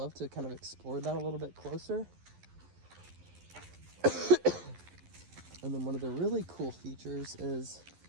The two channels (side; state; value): left; late; 11 ms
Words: to kind of explore that a little bit closer. And then one of the really cool features is